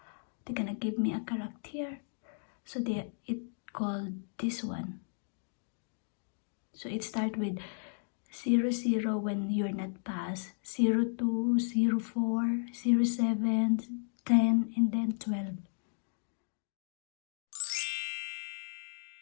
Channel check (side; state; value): right; silent; digital silence